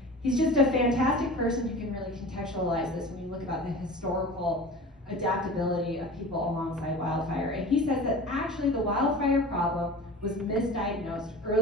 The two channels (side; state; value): both; normal; correlation 0.37